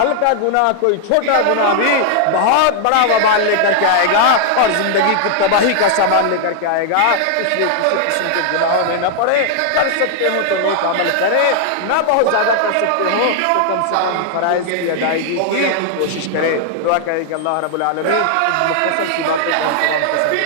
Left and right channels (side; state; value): both; different; correlation 0.00